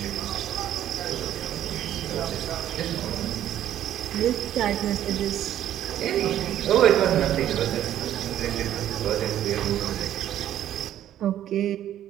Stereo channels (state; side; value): quieter; left; 11.6 dB